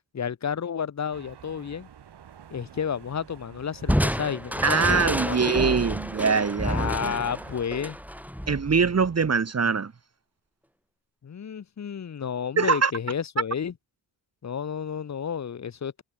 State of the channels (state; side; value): normal; both; correlation 0.14